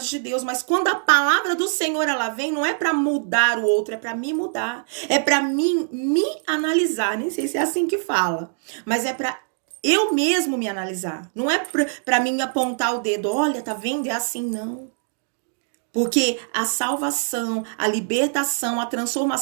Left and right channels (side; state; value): left; silent; digital silence